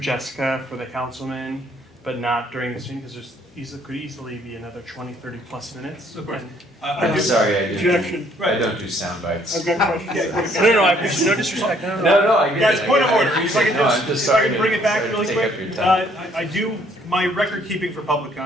for the councilman, but not during this meeting, because could easily be another 20, 30 plus minutes. Of course. I'm sorry, I don't do sound bites. I've got a question. No, I appreciate no disrespect. No, I get it. Guys, point of order. If I I can bring it back really quick. I do, my record keeping for public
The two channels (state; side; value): normal; both; correlation 0.64